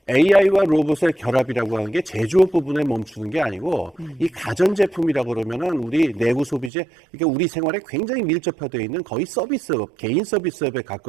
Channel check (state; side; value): drops out; left; at 6.7 s